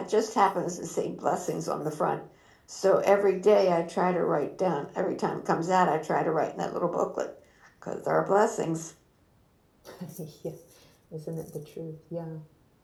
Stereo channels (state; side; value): identical; both; correlation 1.00